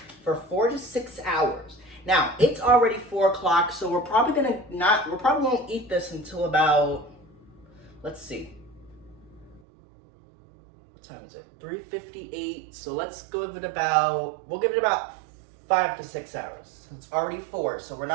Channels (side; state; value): left; drops out; at 9.6 s